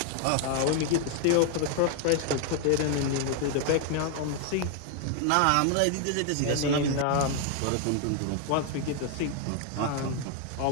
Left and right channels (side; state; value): both; different; correlation 0.00